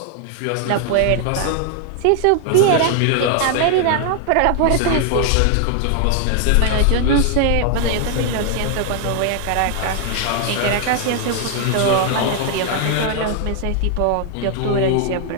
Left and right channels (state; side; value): different; both; correlation 0.00